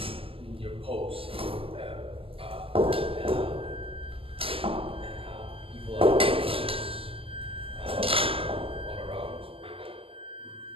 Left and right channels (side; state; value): left; late; 0.27 ms